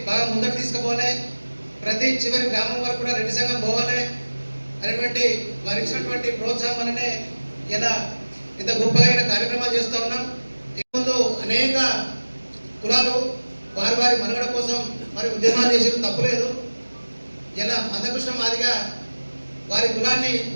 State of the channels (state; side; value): inverted; both; correlation -1.00